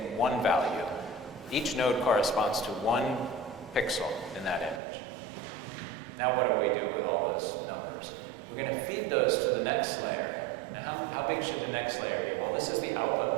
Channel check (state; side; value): drops out; left; at 4.8 s